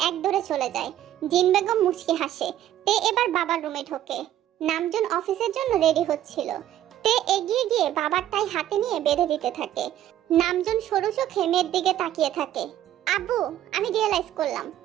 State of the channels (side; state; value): left; quieter; 12.3 dB